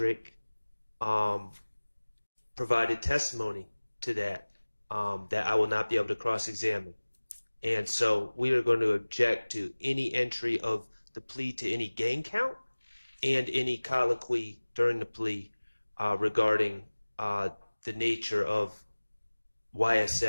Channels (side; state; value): both; inverted; correlation -1.00